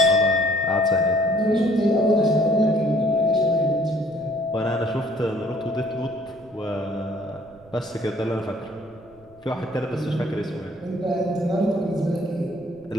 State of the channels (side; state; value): right; noise; rumble, 27 dB below the sound